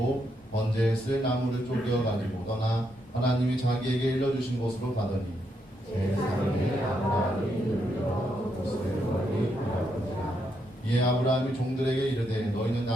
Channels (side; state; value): both; normal; correlation 0.79